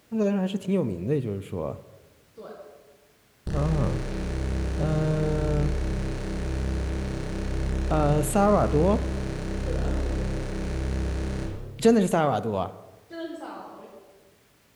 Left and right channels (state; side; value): identical; both; correlation 1.00